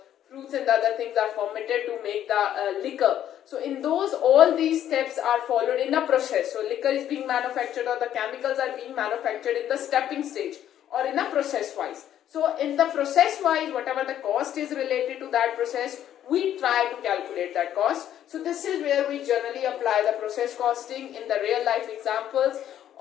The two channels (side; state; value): right; quieter; 11.0 dB